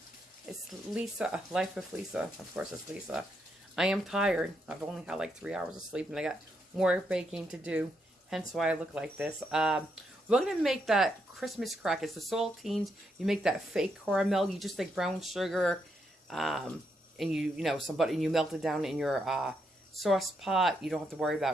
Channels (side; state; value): both; normal; correlation 0.79